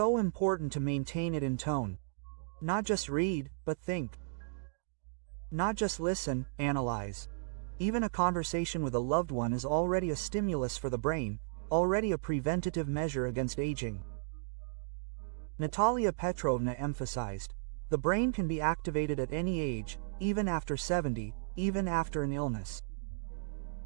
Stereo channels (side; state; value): left; silent; digital silence